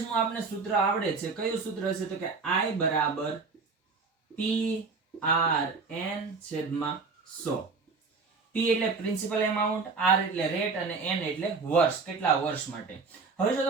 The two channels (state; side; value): quieter; left; 4.5 dB